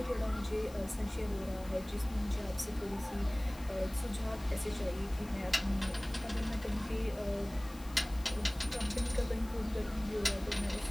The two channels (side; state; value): left; noise; hiss, 20 dB below the sound